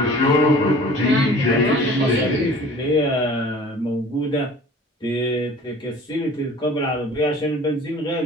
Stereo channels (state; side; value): normal; both; correlation 0.46